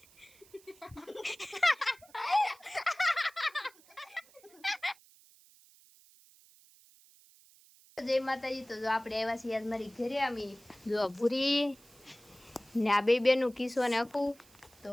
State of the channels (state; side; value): noise; right; hiss, 26 dB below the sound